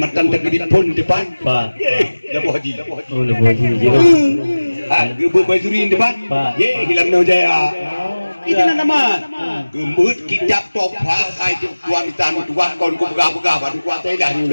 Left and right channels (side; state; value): both; inverted; correlation -1.00